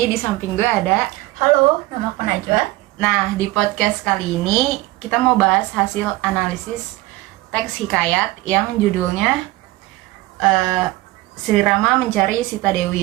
di samping gue ada. Halo, nama aku Najwa. Nah, di podcast kali ini kita mau bahas hasil analisis teks hikayat yang judulnya Sri Rama Mencari Sita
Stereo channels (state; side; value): quieter; left; 19.1 dB